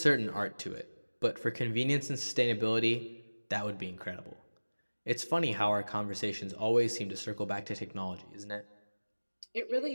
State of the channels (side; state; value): both; inverted; correlation -1.00